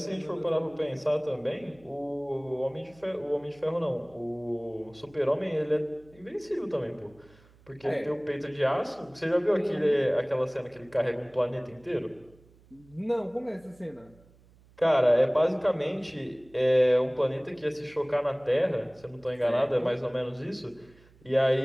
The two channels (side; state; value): right; noise; hum, 28 dB below the sound